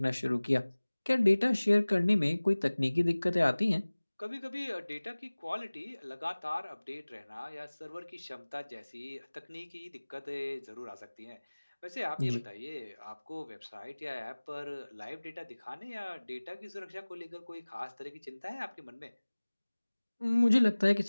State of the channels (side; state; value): both; inverted; correlation -1.00